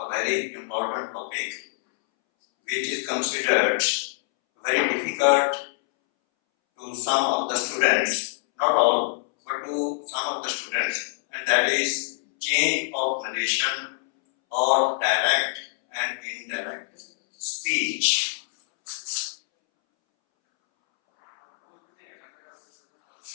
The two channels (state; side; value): silent; right; 62 dB below the other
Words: very important topic which is considered very difficult to some of the students, not all, but to some of the students, and that is change of narration or direct and indirect speech.